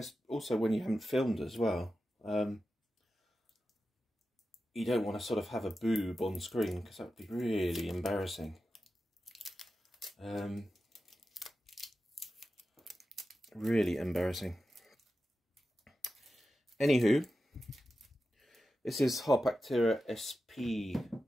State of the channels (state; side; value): normal; both; correlation 0.92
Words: also when you haven't filmed as well. You don't want to sort of have a boob on screen because that would be really embarrassing. Really embarrassing. Anywho, this is Harpactira SP